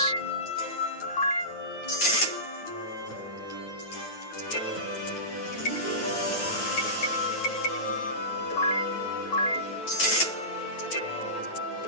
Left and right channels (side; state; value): right; late; 9.3 ms